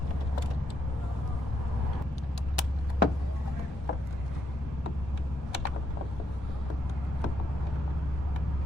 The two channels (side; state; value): both; normal; correlation 0.77